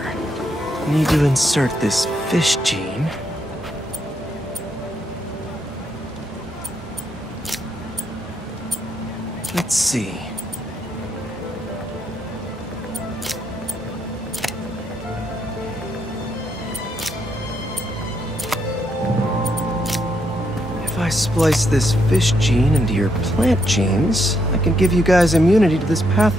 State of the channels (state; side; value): normal; both; correlation 0.77